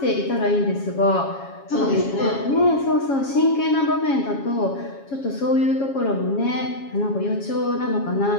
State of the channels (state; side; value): late; right; 7.3 ms